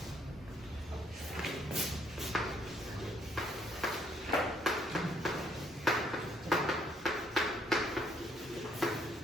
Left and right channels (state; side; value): normal; both; correlation 0.68